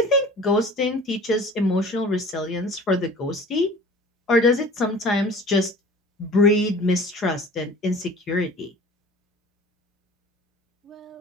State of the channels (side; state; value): both; normal; correlation 0.44